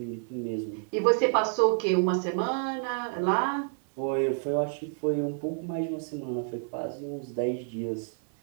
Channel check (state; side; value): silent; left; 59 dB below the other